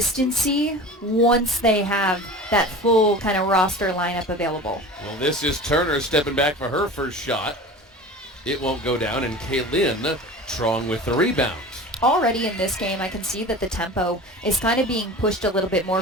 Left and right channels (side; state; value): both; normal; correlation 0.35